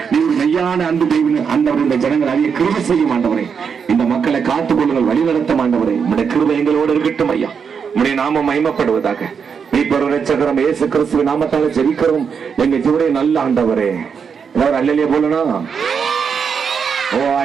நீ ஒரு மெய்யான அன்பு தெய்வம் ஆண்டவரே. இந்த ஜனங்கள் அதிக கிருபை செய்யும் ஆண்டவரே. இந்த மக்களை காத்துக் கொள்ளுங்கள், வழி நடத்தும் ஆண்டவரே. உடைய கிருபை எங்களோடு இருக்கட்டும் ஐயா. உடைய நாமம் மகிமைப்படுவதாக. மீட்பர் இரட்சகரும் இயேசு கிறிஸ்துவின் நாமத்தால ஜெபிக்கிறோம் எங்க ஜீவனுடைய நல்ல ஆண்டவரே. எல்லாரும் அல்லேலூயா போலனா, ஓ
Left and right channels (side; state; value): left; quieter; 6.5 dB